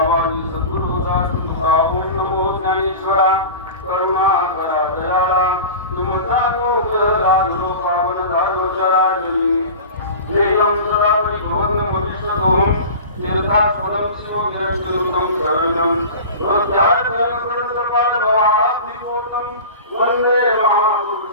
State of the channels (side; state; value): both; inverted; correlation -0.34